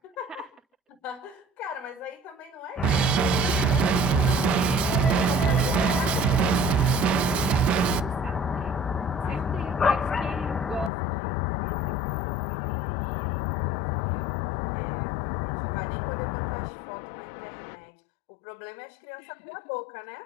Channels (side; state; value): right; drops out; at 10.9 s